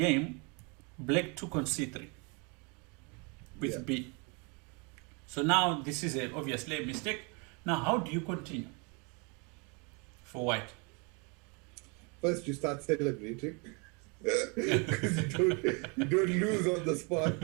black took on c3 with B. So now this is obviously a mistake. Now how do you continue for white? First, you start celebrating because you don't lose on the spot,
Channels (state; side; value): quieter; left; 32.2 dB